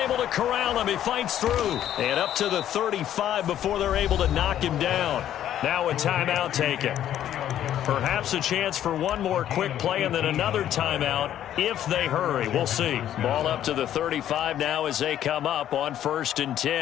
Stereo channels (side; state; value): right; quieter; 11.3 dB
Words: to corral him. He fights through. And up to the 35 before they're able to knock him down. Now a timeout taken. Perhaps a chance for one more quick play and then another timeout if they hurry. We'll see. Ball up to the 35 now as they come up on 1st and